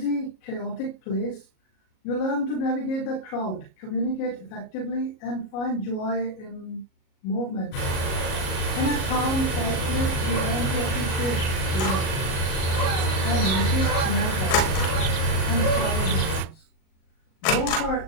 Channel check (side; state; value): right; late; 37 ms